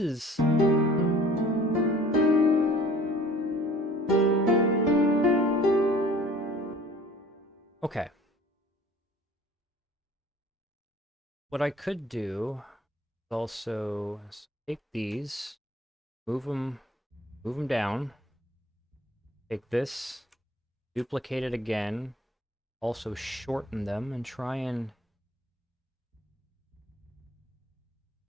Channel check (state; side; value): normal; both; correlation 0.49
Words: Okay. What I could do is also take these, move them down, take this, duplicate it again, also shorten them, and try and...